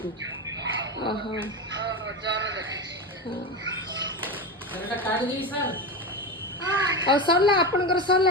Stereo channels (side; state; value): both; normal; correlation 0.19